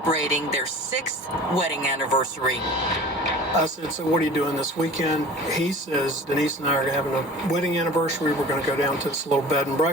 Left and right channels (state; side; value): normal; both; correlation 0.42